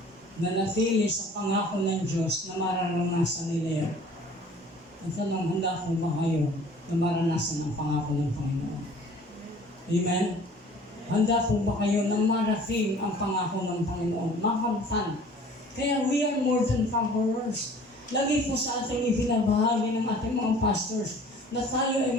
Nanatili sa pangako ng Diyos na mararanasan nila yan. Ang tanong, handa ko ba kayo na maranasan ang pangako ng Panginoon? Amen? Handa po ba kayo na marating ang pangako ng Panginoon? Makamtan Kaya we are more than conquerors. Lagi po sa ating ibinabahagi ng ating mga pastors na tayo ay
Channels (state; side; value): normal; both; correlation 0.50